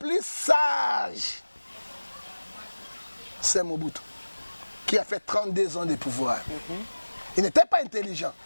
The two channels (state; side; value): inverted; both; correlation -1.00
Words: sage, c'est Mobutu, qui a fait 32 ans de pouvoir. Il n'était pas intelligent,